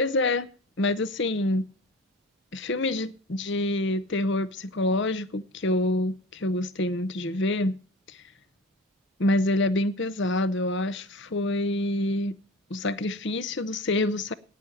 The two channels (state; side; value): normal; both; correlation 0.36